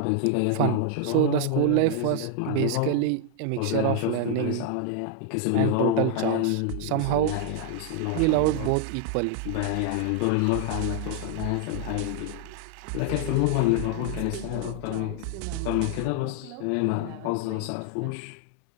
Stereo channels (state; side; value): different; both; correlation 0.00